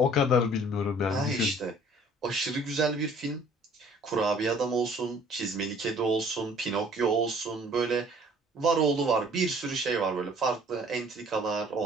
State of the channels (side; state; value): both; normal; correlation 0.54